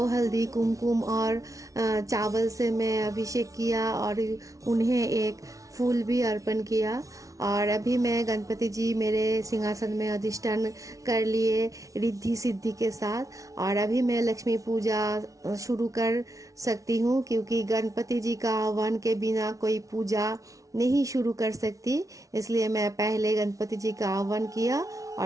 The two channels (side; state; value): left; late; 0.17 ms